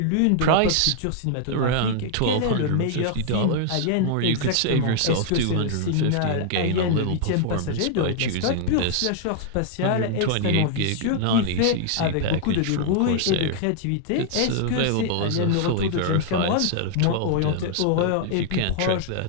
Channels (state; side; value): different; both; correlation 0.00